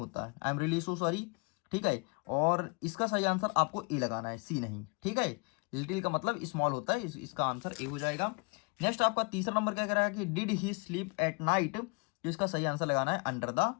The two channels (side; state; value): right; quieter; 32.8 dB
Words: है, I am really so sorry, ठीक है। और इसका सही आंसर आपको ए लगाना है, सी नहीं, ठीक है। लिटिल का मतलब स्मॉल होता है, इसका आंसर ए हो जाएगा। नेक्स्ट आपका तीसरा नंबर क्या कह रहा है कि did he sleep at night, तो इसका सही आंसर लगाना है अंडर द